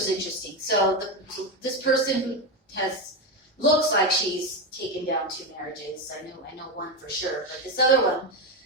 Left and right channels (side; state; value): both; normal; correlation 0.12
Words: interesting. So this person who looks like she's taken down 2 marriages, I know one for sure, but this other one,